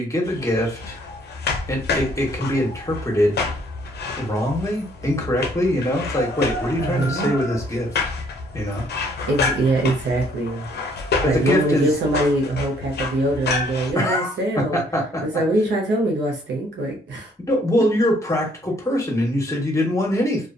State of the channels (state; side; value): normal; both; correlation 0.64